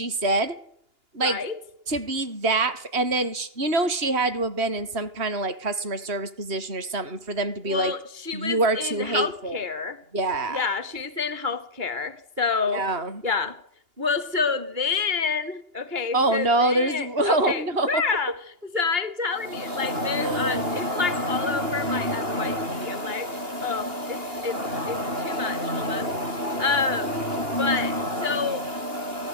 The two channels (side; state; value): left; late; 2.8 ms